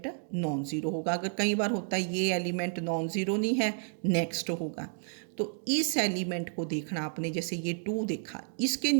नॉन ज़ीरो होगा। अगर कई बार होता है ये एलिमेंट नॉन ज़ीरो नहीं है, नेक्स्ट होगा। तो इस एलिमेंट को देखना आपने, जैसे ये 2 देखा, इसके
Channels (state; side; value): silent; left; 57 dB below the other